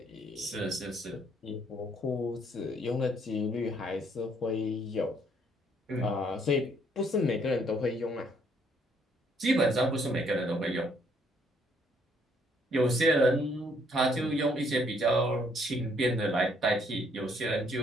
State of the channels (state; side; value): normal; both; correlation 0.67